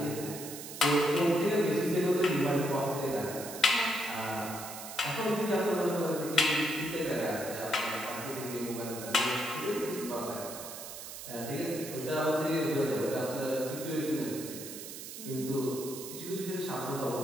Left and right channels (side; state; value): right; noise; hiss, 10 dB below the sound